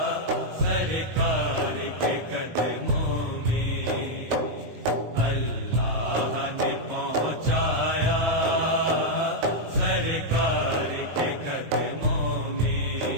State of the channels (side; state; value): left; late; 19 ms